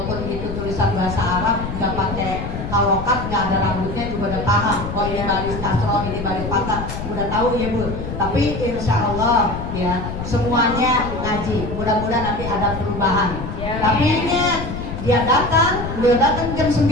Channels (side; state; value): left; noise; rumble, 7 dB below the sound